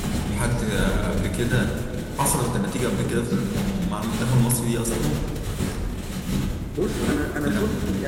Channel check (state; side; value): identical; both; correlation 1.00